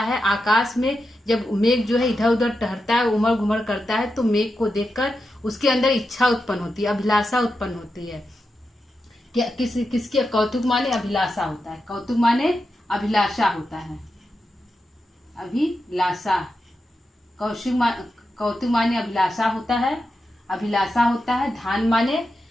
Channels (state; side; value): normal; both; correlation 0.88